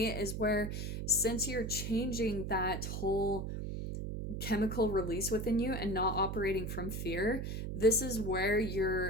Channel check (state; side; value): noise; right; hum, 4 dB below the sound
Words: is where, since you're changing that whole chemical release within you and not operating from fear, this is where